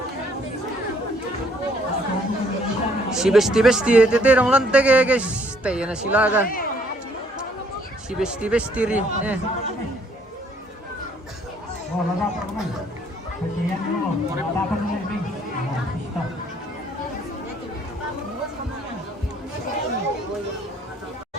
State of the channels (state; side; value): normal; both; correlation 0.64